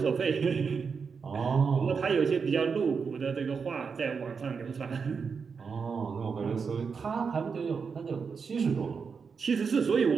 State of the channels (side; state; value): left; quieter; 5.6 dB